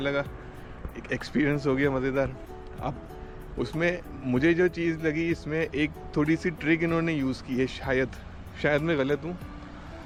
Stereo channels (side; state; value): both; identical; correlation 1.00